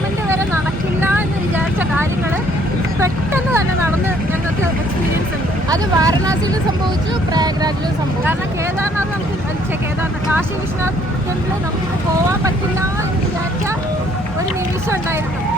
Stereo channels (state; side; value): normal; both; correlation 0.63